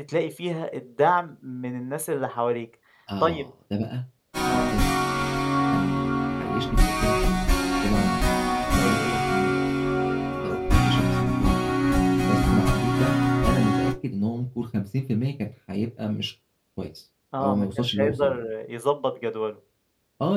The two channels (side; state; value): both; identical; correlation 1.00